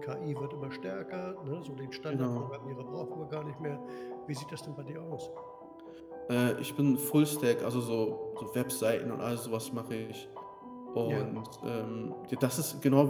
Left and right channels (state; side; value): identical; both; correlation 1.00